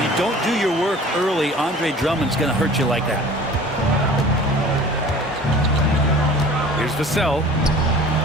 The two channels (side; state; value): both; normal; correlation 0.45